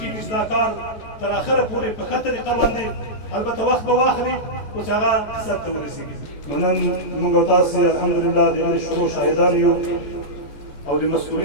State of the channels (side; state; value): right; late; 14 ms